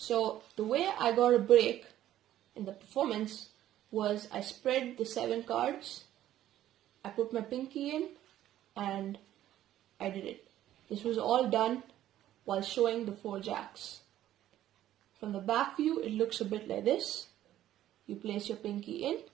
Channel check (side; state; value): left; quieter; 12.8 dB